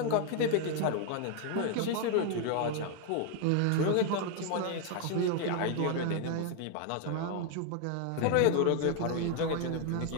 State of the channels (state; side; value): different; both; correlation 0.00